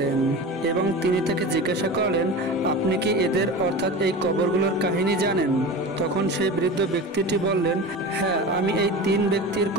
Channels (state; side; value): normal; both; correlation 0.31